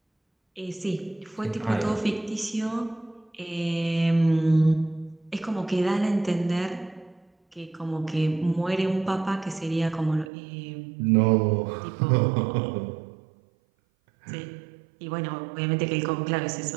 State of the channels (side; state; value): left; drops out; at 10.3 s